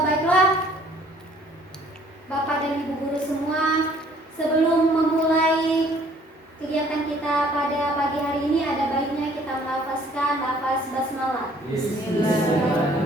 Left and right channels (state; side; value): normal; both; correlation 0.58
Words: Baiklah, Bapak dan Ibu guru semua, sebelum memulai kegiatan kita pada pagi hari ini ada baiknya kita melafazkan lafaz basmalah.